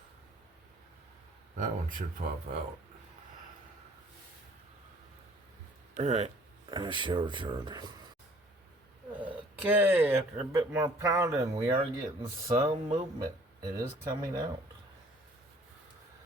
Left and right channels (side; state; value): both; normal; correlation 0.55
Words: That one should pop out. Alright, I shall return. Okay, after a bit more pounding, we are getting some movement. It is coming out.